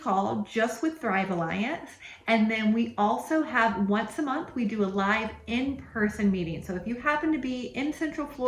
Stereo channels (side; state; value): both; identical; correlation 1.00